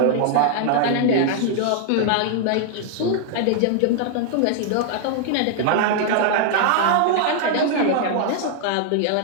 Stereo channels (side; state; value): both; different; correlation 0.00